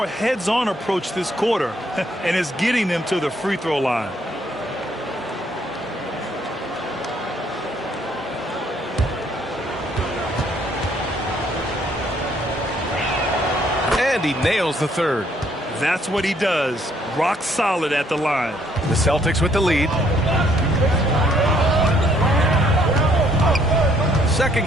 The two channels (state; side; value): normal; both; correlation 0.67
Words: heads-on approach this quarter, and it's getting them to the free throw line. And he nails the third. That's what he does. Rock solid at the line. The Celtics with the lead. Second